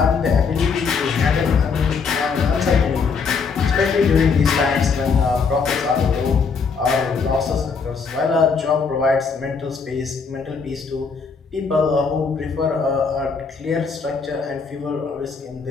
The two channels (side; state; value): right; quieter; 5.3 dB